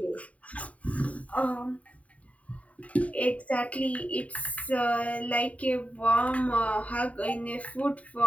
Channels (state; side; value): late; right; 0.068 ms